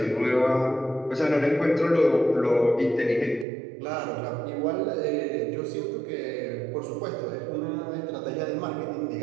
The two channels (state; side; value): drops out; left; at 3.5 s